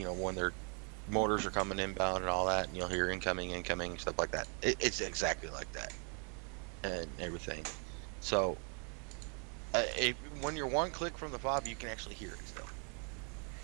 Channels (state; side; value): quieter; left; 38.5 dB